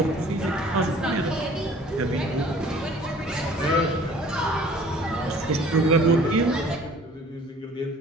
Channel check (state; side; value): normal; both; correlation 0.51